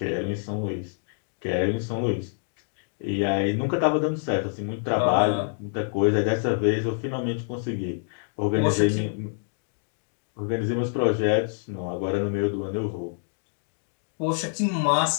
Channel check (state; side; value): silent; right; digital silence